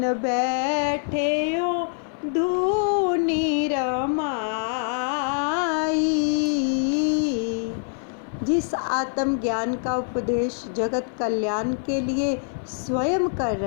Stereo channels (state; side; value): silent; right; 56 dB below the other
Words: बैठे हो धूनी रमाई। जिस आत्म ज्ञान का उपदेश जगत कल्याण के लिए स्वयं कर